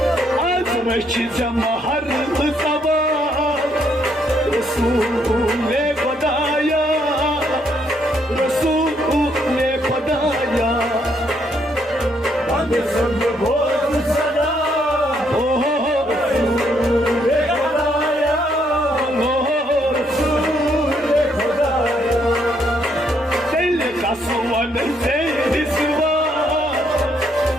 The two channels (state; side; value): normal; both; correlation 0.72